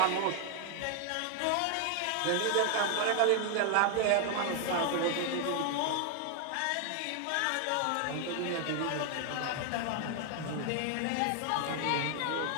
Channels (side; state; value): both; different; correlation 0.00